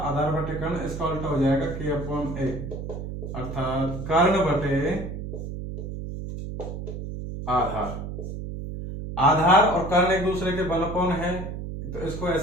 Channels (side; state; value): right; noise; hum, 7 dB below the sound